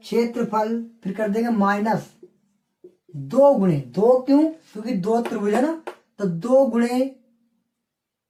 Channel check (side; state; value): both; identical; correlation 1.00